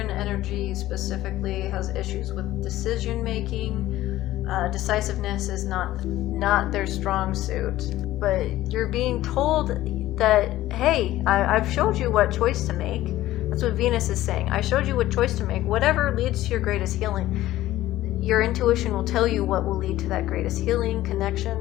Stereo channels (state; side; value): quieter; right; 15.2 dB